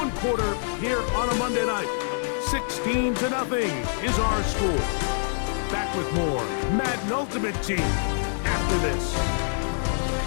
quarter here on a Monday night. 16-0 is our score. Back with more Madden Ultimate Team after this.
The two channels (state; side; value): silent; right; digital silence